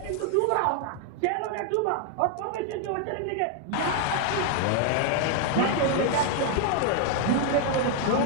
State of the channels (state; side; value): different; both; correlation 0.00